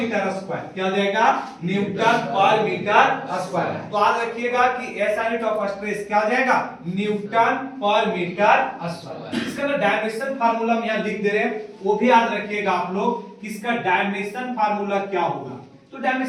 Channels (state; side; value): identical; both; correlation 1.00